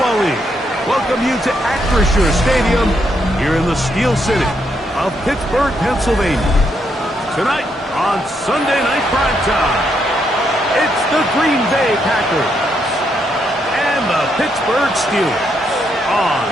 League welcome you to Acrisure Stadium here in the Steel City of Pittsburgh, Pennsylvania. Tonight on Sunday Night Primetime, it's the Green Bay Packers and the Pittsburgh Steelers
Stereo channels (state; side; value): normal; both; correlation 0.77